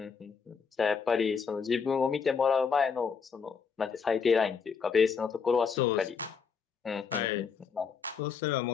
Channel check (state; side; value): quieter; right; 6.0 dB